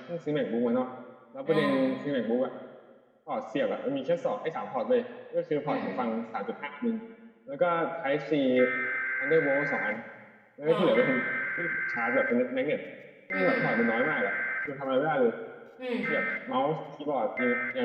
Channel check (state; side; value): identical; both; correlation 1.00